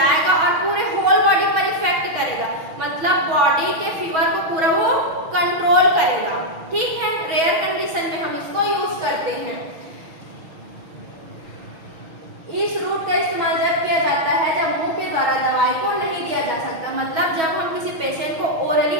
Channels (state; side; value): late; left; 6.2 ms